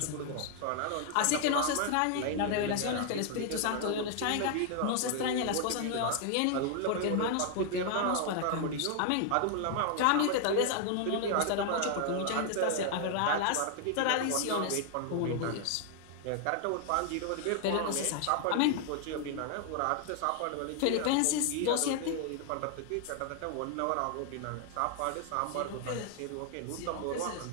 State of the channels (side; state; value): both; different; correlation 0.00